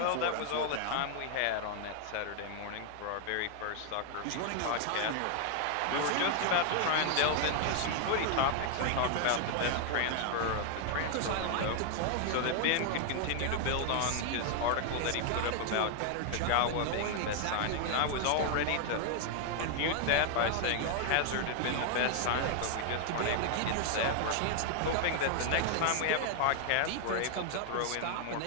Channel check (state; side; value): different; both; correlation 0.00